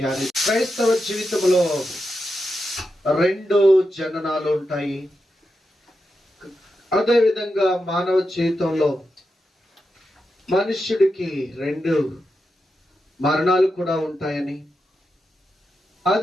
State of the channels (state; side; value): normal; both; correlation 0.88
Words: క్రైస్తవ జీవితంలో రెండు జననాలు ఉంటాయి. అదేవిధంగా మానవ జీవితంలో మనుష్యుడికి రెండు మరణాలు కూడా ఉంటాయని,